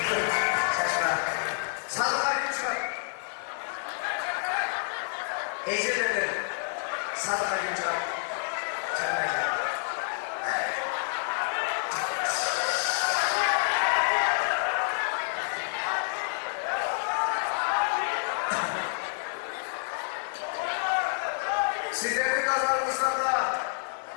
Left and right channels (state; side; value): silent; right; digital silence